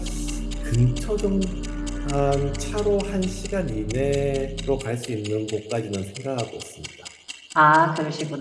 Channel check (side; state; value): both; identical; correlation 1.00